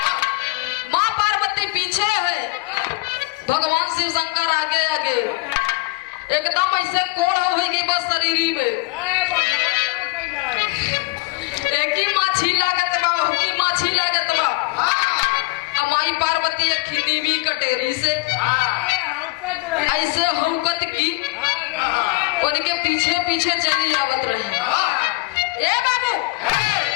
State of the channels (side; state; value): right; quieter; 23.7 dB